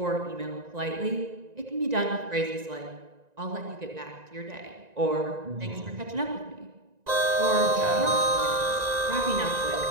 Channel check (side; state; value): left; late; 1.9 ms